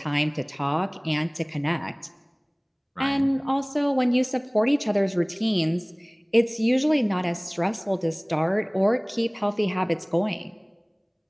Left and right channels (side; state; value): both; identical; correlation 1.00